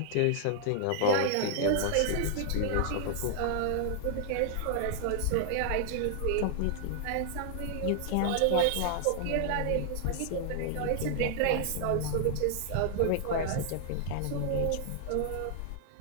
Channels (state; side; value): different; both; correlation 0.00